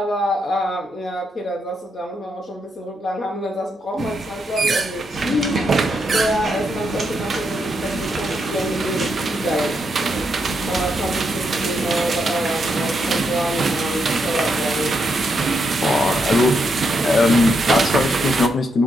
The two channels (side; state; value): both; normal; correlation 0.80